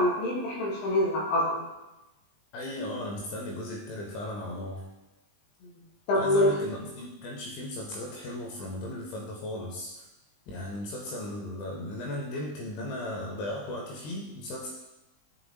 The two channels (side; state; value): right; late; 20 ms